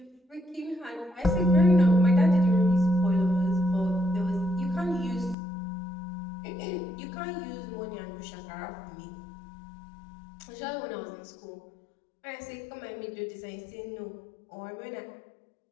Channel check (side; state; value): right; drops out; at 5.4 s